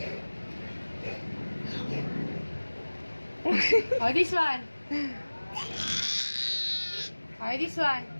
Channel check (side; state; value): both; inverted; correlation -1.00